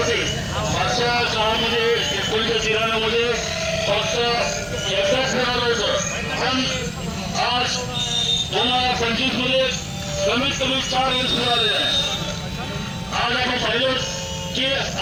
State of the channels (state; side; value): identical; both; correlation 1.00